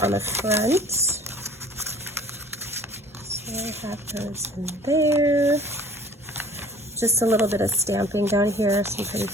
on the front. So I have those in there. Just a little bit of stamping down here, some pretty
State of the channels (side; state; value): both; normal; correlation 0.49